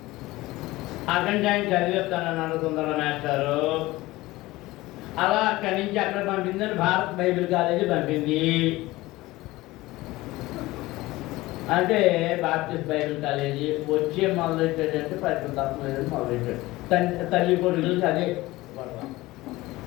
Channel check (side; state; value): right; quieter; 19.1 dB